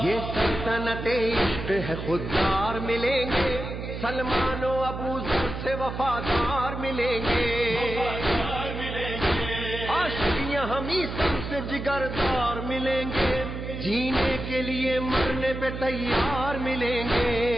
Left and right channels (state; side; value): noise; right; hum, 7 dB below the sound